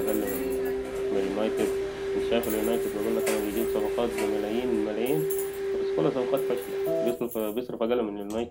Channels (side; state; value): both; identical; correlation 1.00